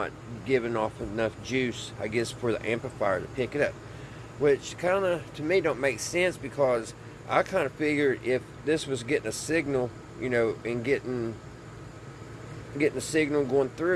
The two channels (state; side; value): identical; both; correlation 1.00